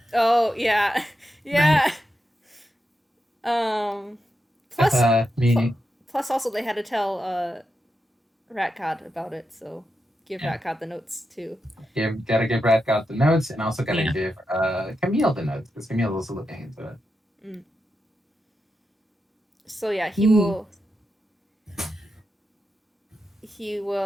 Oh yeah, yeah. Plus, Meaning, plus also they had to tell Ratcod about it, so give yeah, Ratcod the notes too. gotta give Radcott the notes, and also gotta Yeah. give Camille the notes because Camille is also looking into it. Mm. So yeah, he will. He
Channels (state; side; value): normal; both; correlation 0.87